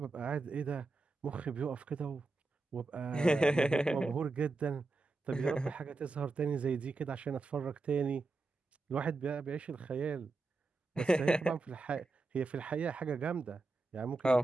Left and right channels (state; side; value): quieter; left; 3.4 dB